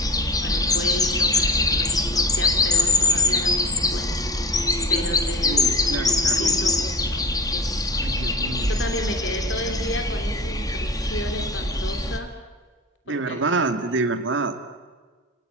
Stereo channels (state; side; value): normal; both; correlation 0.33